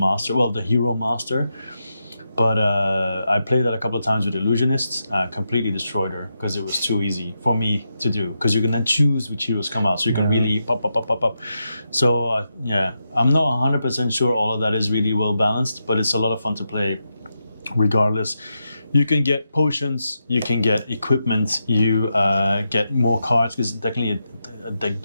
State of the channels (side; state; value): both; inverted; correlation -0.86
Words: well, the hero master. But I played that a couple of times with Illusionists, completely destroyed her because it was too easy for me to do. Because you can then choose which heroes come out, so you can really pop. So yeah, I'm not 100% sure all of that is really well balanced, but it's a lot of fun to play regardless. You can get potions, you can get equipment, you get more cards because it's technically a deck